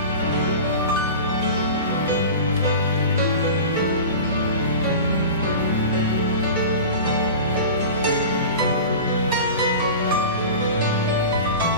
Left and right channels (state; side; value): inverted; both; correlation -0.33